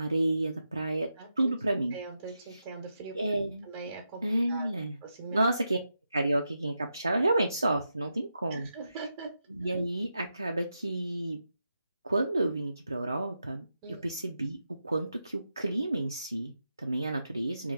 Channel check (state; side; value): inverted; both; correlation -0.87